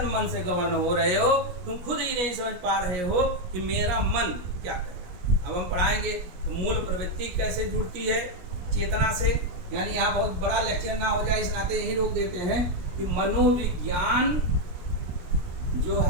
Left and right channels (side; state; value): left; late; 17 ms